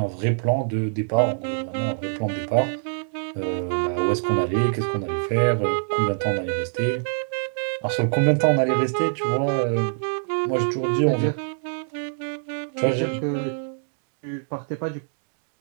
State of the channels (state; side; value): silent; left; digital silence